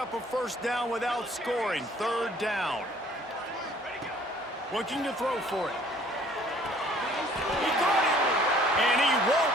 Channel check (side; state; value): both; normal; correlation 0.56